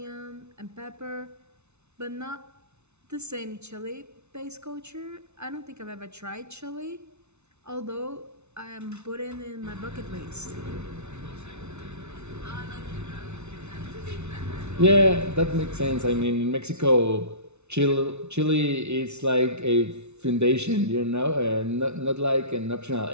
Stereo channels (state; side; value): late; left; 0.81 ms